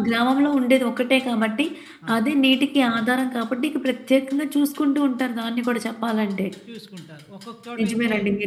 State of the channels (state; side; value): identical; both; correlation 1.00